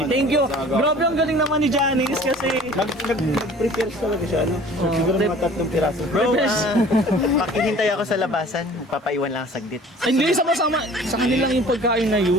Thank you. Grabe, ang galing naman ni Janice kasi Nag-prepare talaga siya, ano? Siguro mga 3 piraso. Bro, pakihintay ako sa labasan. Papaiwan lang saglit. hindi, sama-sama. Sa kanila yung pagkain na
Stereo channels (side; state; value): both; normal; correlation 0.48